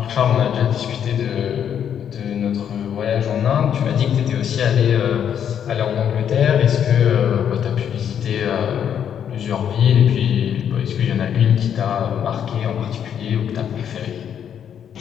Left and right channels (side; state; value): right; quieter; 8.8 dB